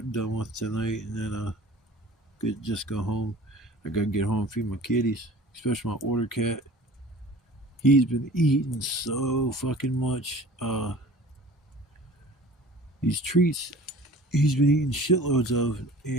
done with tonight and then just go home. I gotta get home and feed my kitties, especially my order cat. He's been eating so fucking much. These treats he's been eating shitloads of,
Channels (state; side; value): normal; both; correlation 0.44